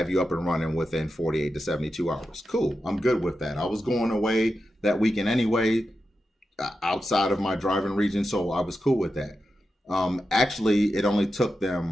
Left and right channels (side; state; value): both; normal; correlation 0.90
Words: you up and running within 48 to 72 hours. Cool, I'm good with that. I was going away that weekend anyway, outside of my driving region, so I was cool with that. Actually, it took